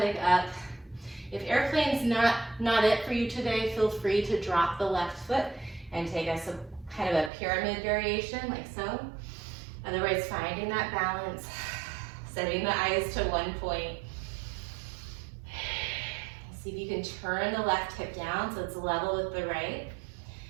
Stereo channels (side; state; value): left; drops out; at 7.3 s